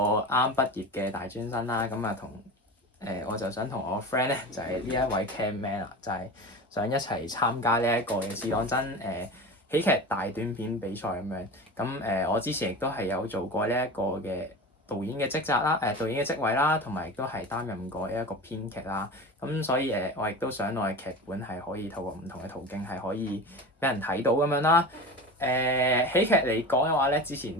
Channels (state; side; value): normal; both; correlation 0.30